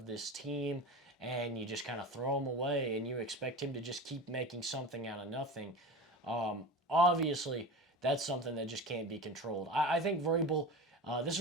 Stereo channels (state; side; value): normal; both; correlation 0.30